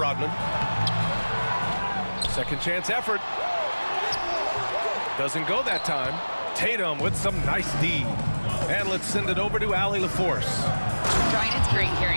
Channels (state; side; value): inverted; both; correlation -1.00